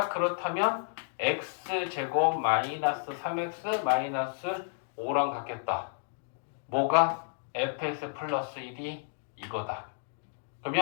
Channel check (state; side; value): silent; right; digital silence